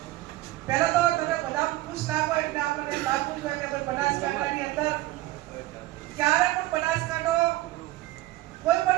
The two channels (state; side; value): quieter; left; 17.1 dB